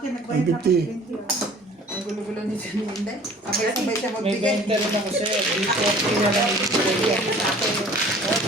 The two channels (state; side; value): normal; both; correlation 0.49